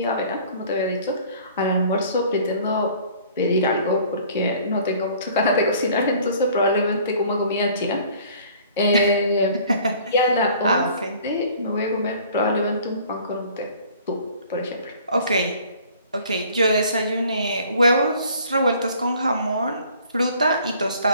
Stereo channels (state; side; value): inverted; both; correlation -0.53